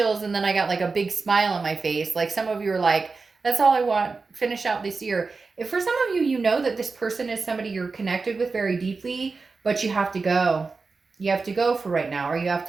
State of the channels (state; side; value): quieter; left; 4.3 dB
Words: and then I got like a big smile on my face. Like some of you are like, that's all I want, finish out this year. If for some of you, you know that this person is somebody you're connected with very deeply, but you have to go. you have to go for right now, or you have